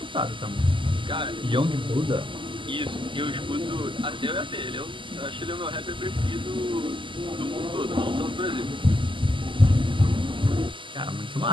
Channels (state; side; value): late; left; 0.24 ms